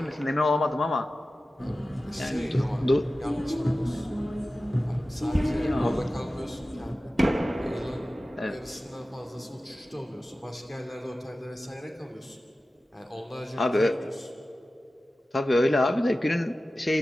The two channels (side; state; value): both; normal; correlation 0.95